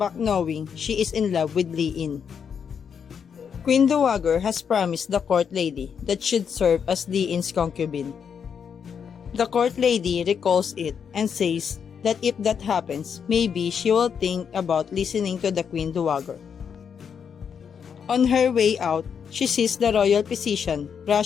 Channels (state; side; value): quieter; right; 7.1 dB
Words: knowing she is in love with Li In. Queen Dowager has promised the court lady that should serve as Li In's concubine. The court lady recalls it and says that if that happens, maybe she will think about listening to the Queen Dowager. On her way out, she sees the royal physician